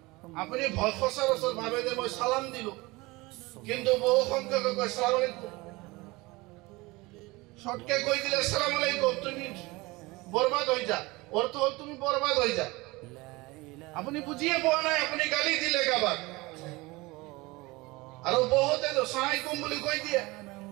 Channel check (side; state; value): left; quieter; 22.6 dB